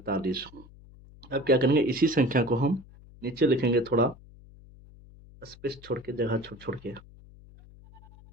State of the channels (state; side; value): noise; left; hum, 22 dB below the sound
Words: अब क्या करेंगे? इसी संख्या को हम नीचे लिखेंगे, थोड़ा स्पेस छोड़ के, जगह छोड़ छोड़ के।